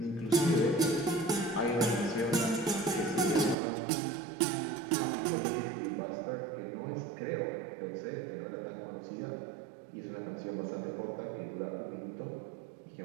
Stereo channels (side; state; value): left; drops out; at 3.6 s